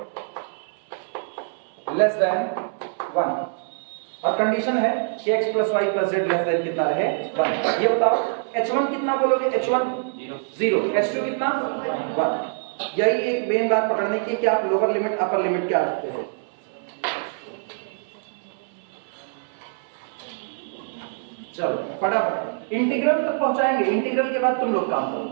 less than 1। और कंडीशन है कि x plus Y plus z less than कितना रहे 1। ये बताओ h1 कितना बोलोगे, h1 0, h2 कितना 1। यही एक मेन बात पकड़ने की कि आप लोअर लिमिट अपर लिमिट क्या रखते हो। चलो फटाफट इंटीग्रल तक पहुंचाएंगे, इंटीग्रल के बाद तुम लोग काम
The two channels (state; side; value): silent; left; 62 dB below the other